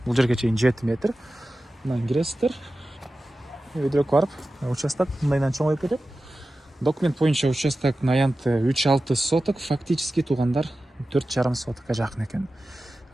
чейин 7 метр. Мындан киресиздер. Өйдөрөк барып, участок мындайдан чоңоюп кетет. Документ боюнча участоктун аянты 3,6 соток, фактически туугандар 4,5 сотокко жакын экен.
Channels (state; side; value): normal; both; correlation 0.94